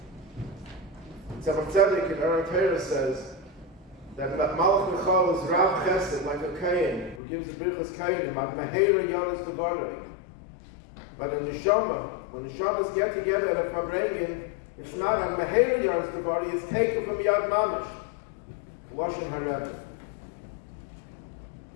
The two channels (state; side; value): drops out; right; at 7.2 s